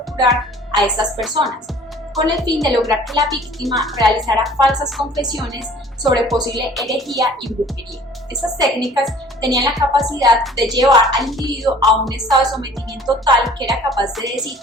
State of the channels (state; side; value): normal; both; correlation 0.50